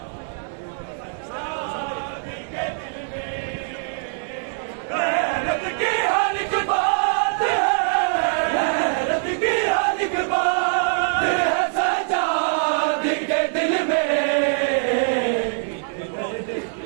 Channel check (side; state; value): left; silent; digital silence